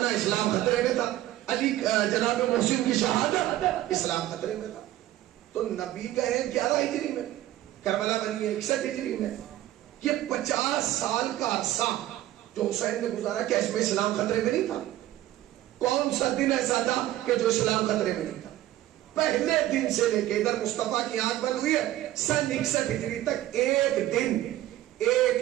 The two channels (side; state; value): left; quieter; 14.3 dB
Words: اسلام خطرے میں تھا. علی جناب محسن کی شہادت اسلام خطرے میں تھا. تو نبی کہیں 11 ہجری میں، کربلا بنی ہے 61 ہجری میں. یہ 50 سال کا عرصہ جو حسین نے گزارا، کیا اس میں اسلام خطرے میں نہیں تھا؟ کون سا دن ایسا تھا کہ جو اسلام خطرے میں نہیں تھا؟ پہلے دن سے لے کے ادھر مصطفیٰ کی آنکھ بند ہوئی ہے سن 61 ہجری تک ایک دن،